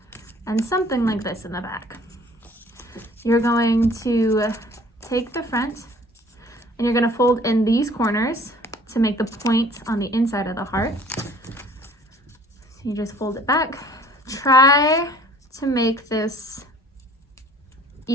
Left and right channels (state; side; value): normal; both; correlation 0.52